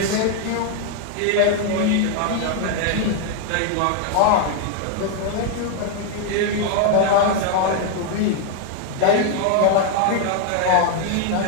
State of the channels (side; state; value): both; different; correlation 0.00